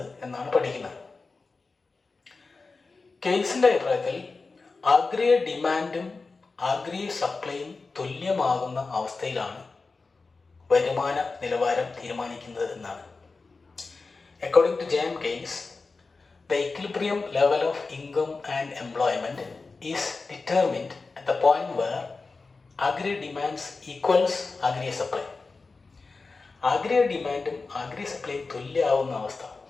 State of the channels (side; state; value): right; quieter; 4.0 dB